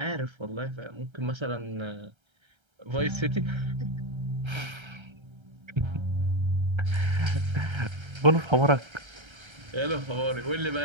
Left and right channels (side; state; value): left; late; 1.3 ms